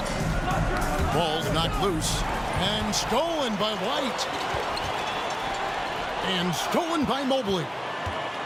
Ball's knocked loose and stolen by White. And stolen by Mobley.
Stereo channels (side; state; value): both; identical; correlation 1.00